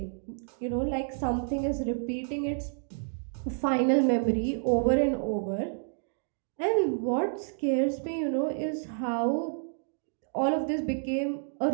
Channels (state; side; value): silent; left; digital silence